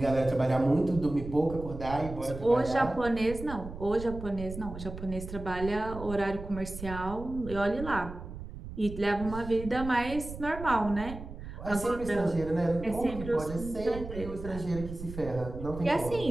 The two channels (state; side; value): noise; right; rumble, 10 dB below the sound